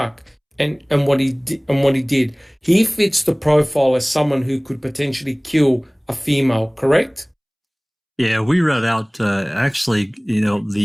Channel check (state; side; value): identical; both; correlation 1.00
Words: and what he did. He fits the profile as someone who could potentially kill a female. Correct? Yeah, we read out actually.